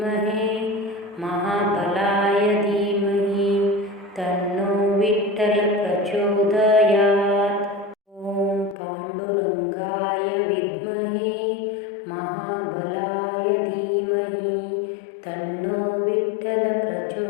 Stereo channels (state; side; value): drops out; right; at 8.8 s